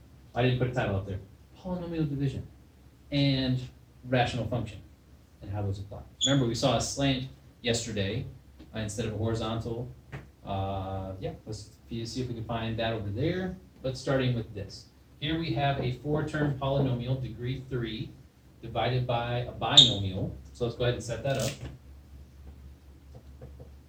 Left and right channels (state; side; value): identical; both; correlation 1.00